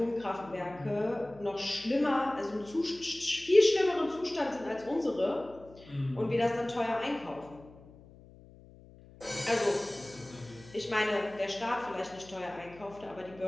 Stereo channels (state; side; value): noise; left; hum, 22 dB below the sound